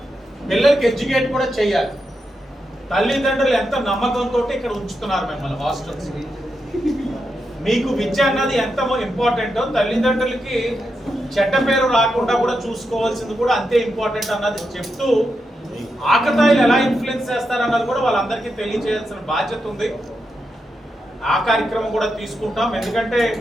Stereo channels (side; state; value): both; normal; correlation 0.85